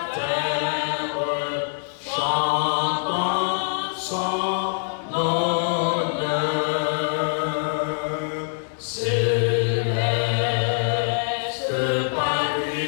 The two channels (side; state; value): right; silent; digital silence